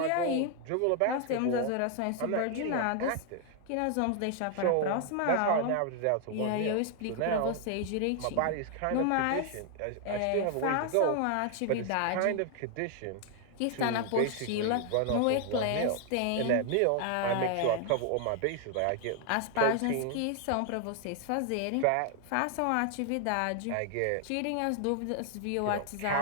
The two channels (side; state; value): both; different; correlation 0.00